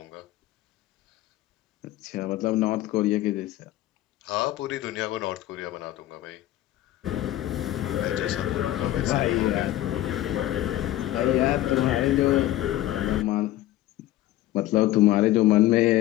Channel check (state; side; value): quieter; right; 14.7 dB